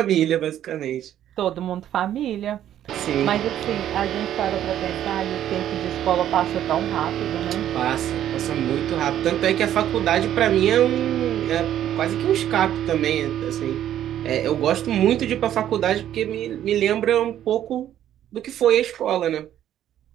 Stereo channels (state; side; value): quieter; left; 11.3 dB